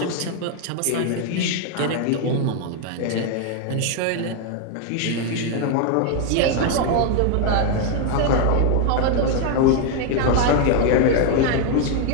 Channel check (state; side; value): different; both; correlation 0.00